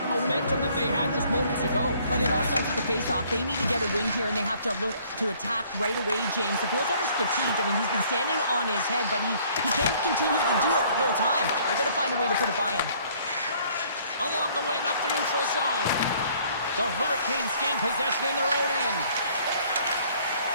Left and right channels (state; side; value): inverted; both; correlation -0.59